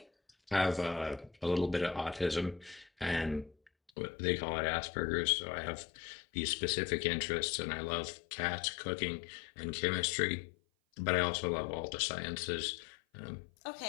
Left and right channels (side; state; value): right; drops out; at 3.9 s